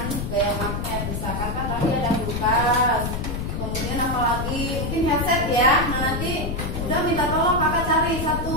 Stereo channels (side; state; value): left; noise; rumble, 3 dB below the sound